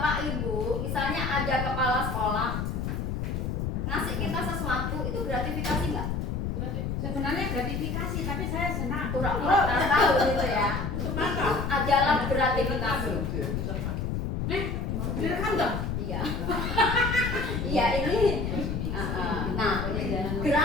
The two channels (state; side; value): noise; left; rumble, 2 dB below the sound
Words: Ibu misalnya ada kepala sekolah ngasih kita sesuatu, itu gratifikasi nggak? Sebenarnya gratifikasi, tapi saya senang. Pura-pura tak tahu gitu ya. Itu adalah gratifikasi. Direkam dong? Iya. Iya ini. Nah,